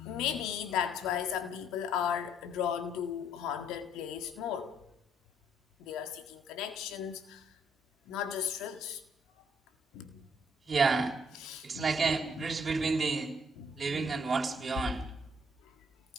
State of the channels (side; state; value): both; normal; correlation 0.66